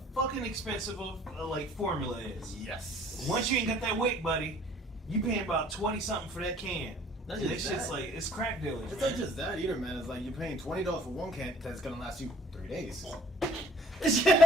fucking expensive like formula is. Yes. Once you ain't got that weight, buddy, you paying about 20 something for that can. Not And just this shit's that. like it's crack dealers. It's man. not just that either, man. It's like you're paying $20 for one can that's gonna last you 3 days.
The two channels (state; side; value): normal; both; correlation 0.56